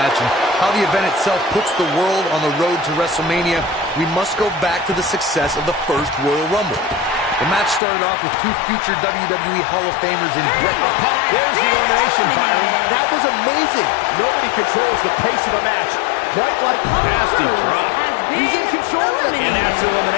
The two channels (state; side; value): drops out; right; at 7.8 s